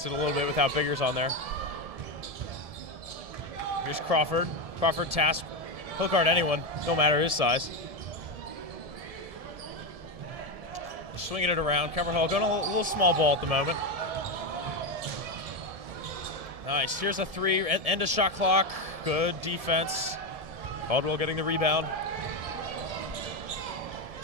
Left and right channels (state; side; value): late; left; 1.7 ms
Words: it a little bit without Biggers on there. Here's Crawford. Crawford tasked He'll guard anyone, no matter his size. Just swinging it around. Cover Hall going a little small ball at the moment. Nice. Here's a 3. End of shot clock. Good defense. Caldwell getting the rebound.